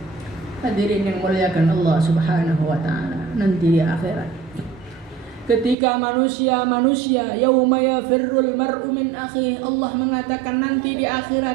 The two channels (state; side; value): drops out; left; at 5.8 s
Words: Hadirin yang muliakan Allah Subhanahu wa taala, nanti di akhirat ketika manusia yauma yafirrul mar'u min akhi, Allah mengatakan nanti di